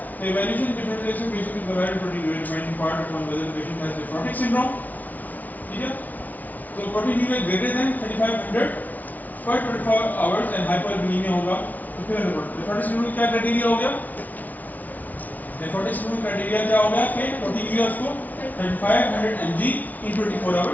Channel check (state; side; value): late; right; 0.077 ms